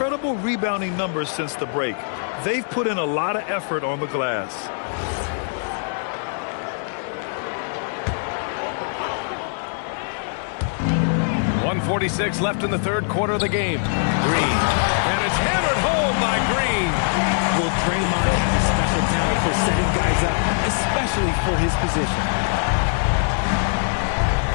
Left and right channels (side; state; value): right; silent; digital silence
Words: rebounding numbers since the break. They've put in a lot of effort on the glass. .146 left in the third quarter of the game. Green. And it's hammered home by Green. Well, Draymond has a special talent for setting guys up, especially for his position.